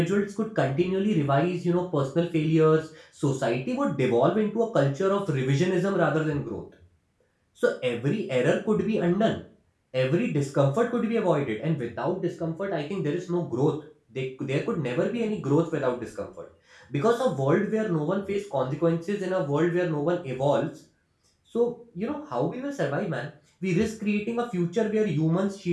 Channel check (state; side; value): identical; both; correlation 1.00